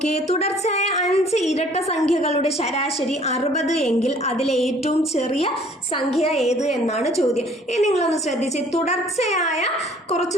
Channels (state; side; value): normal; both; correlation 0.55